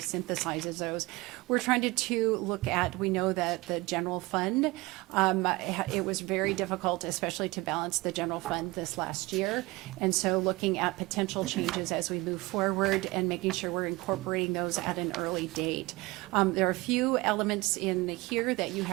synthesizes those. We're trying to look at, we know that the general fund, it was very difficult, especially to balance the general fund this last year. And so looking at potential changes as we move forward and making sure we're incorporating those at an early date. There are a few elements in here that you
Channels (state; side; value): quieter; left; 22.3 dB